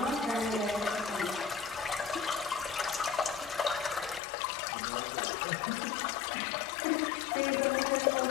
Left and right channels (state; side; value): drops out; right; at 4.2 s